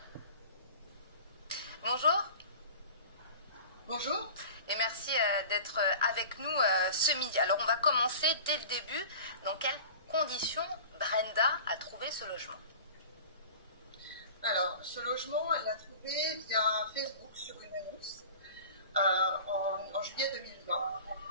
Bonjour. Bonjour. Et merci d'être avec nous ce midi. Alors on va commencer dès le début. Dans quelles conditions Brenda a trouvé ce logement? Alors, ce logement, elle l'a trouvé via Facebook sur une annonce en juillet 2020.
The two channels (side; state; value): both; inverted; correlation -0.39